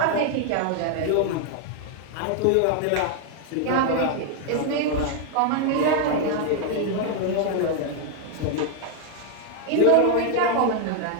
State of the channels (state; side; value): different; both; correlation 0.00